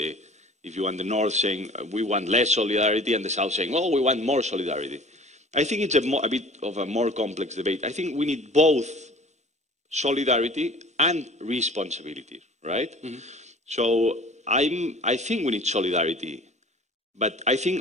if you want, the North saying we want less solidarity, and the South saying, oh, we want more solidarity. I think it's a bit of a more complex debate. I think we need both solidarity and responsibility, right? Mm-hmm. So I think we need solidarity, but I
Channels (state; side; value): normal; both; correlation 0.46